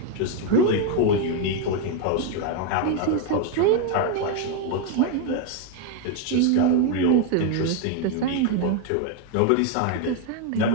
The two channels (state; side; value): different; both; correlation 0.01